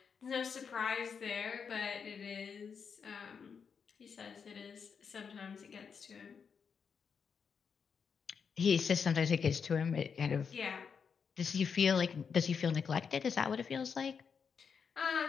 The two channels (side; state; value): right; quieter; 6.3 dB